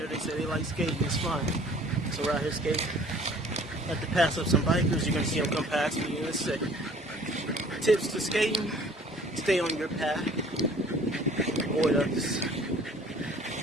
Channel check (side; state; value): both; normal; correlation 0.52